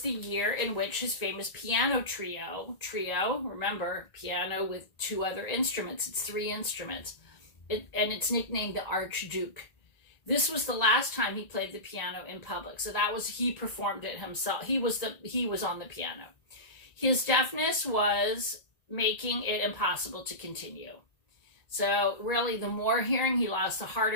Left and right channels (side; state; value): right; late; 1.9 ms